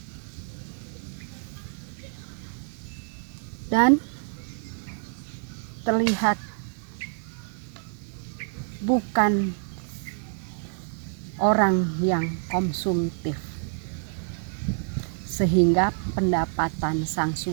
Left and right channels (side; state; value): left; silent; 60 dB below the other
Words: Dan terlihat bukan orang yang konsumtif, sehingga pendapatan sang